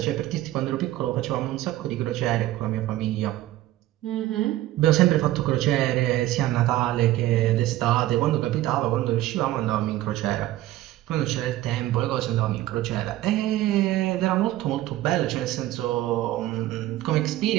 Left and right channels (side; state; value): left; quieter; 15.2 dB